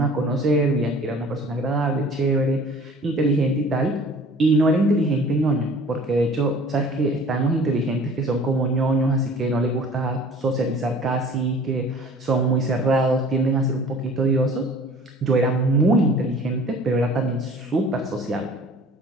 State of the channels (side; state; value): both; normal; correlation 0.48